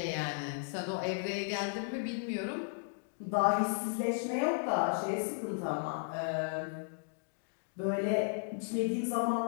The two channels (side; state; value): right; silent; 55 dB below the other